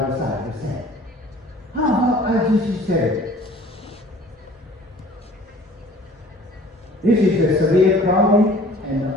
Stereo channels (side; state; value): both; normal; correlation 0.49